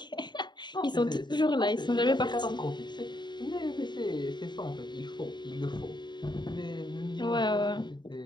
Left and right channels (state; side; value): late; right; 0.22 ms